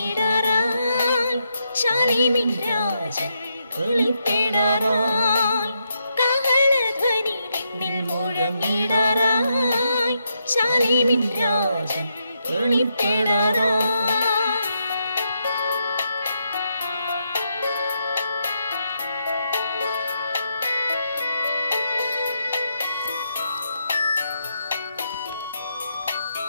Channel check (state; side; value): inverted; both; correlation -0.81